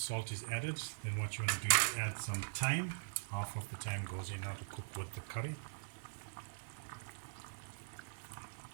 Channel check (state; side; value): silent; left; digital silence